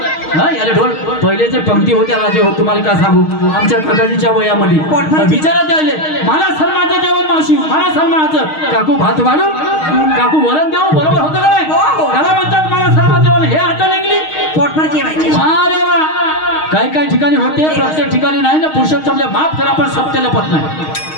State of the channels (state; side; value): late; right; 6.4 ms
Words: याला ढोल पहिलेचे पंक्ती होत्या राजे हो तुम्हाला काय सांगू आमच्या काकाजीच्या वयामध्ये विचारात जायले मला सलमाचं जेवण मावशी मला सलमाचं काकू भात वाढू काकू वरण देऊ बरोबर होतं का नाही त्याला म्हणतात मला सलमाचं जेवण हे आता लागली पोटभर जेवायचे अरे वा काही काही ठिकाणी होते प्रत्येक ठिकाणी नाही ना पुरुषोत्तमले माफ करा पण सत्याला पत नाही